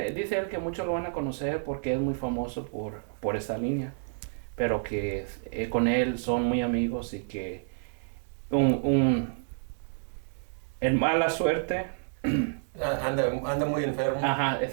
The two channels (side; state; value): left; silent; digital silence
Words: él que muchos lo van a conocer porque es muy famoso por esta línea, pero que con él son muy amigos y que en mala suerte. Anda muy enfermo. Ajá,